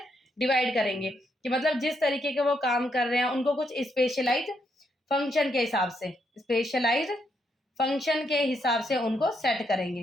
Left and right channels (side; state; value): both; normal; correlation 0.77